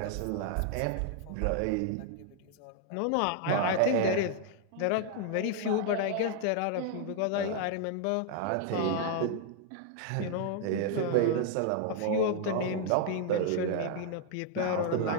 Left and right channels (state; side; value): different; both; correlation 0.00